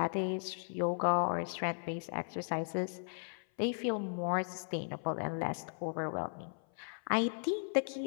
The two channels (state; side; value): silent; right; 53 dB below the other